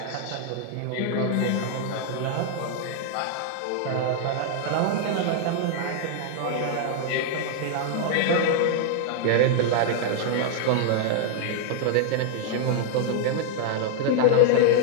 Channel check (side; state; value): both; different; correlation 0.00